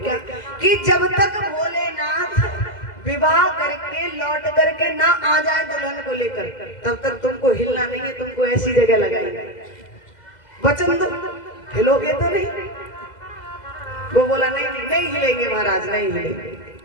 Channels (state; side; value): late; right; 2.0 ms